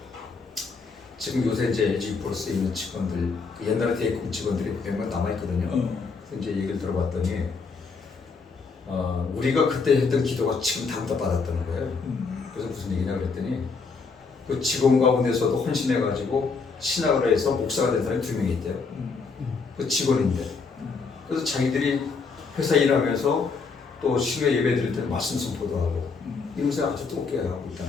지금 요새 이제 LG 플러스에 있는 직원들 옛날에 대입금 직원들이 몇몇 남아 있거든요. 그래서 이제 얘기를 들어봤더니 우리가 그때 했던 기도가 지금 다 받았다는 거예요. 그래서 무슨 얘기냐 그랬더니 그 직원 가운데서도 헌신해가지고 신학을 해서 목사가 된 사람이 2명이 있대요. 그 직원인데 그래서 자기들이 회사 일하면서 또 신뢰 예배 드릴 때 말씀 선포도 하고 이것을 아주 뜨겁게 하고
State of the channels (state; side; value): quieter; right; 4.7 dB